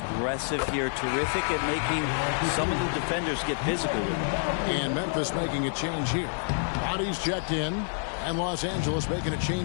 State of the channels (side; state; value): right; silent; 58 dB below the other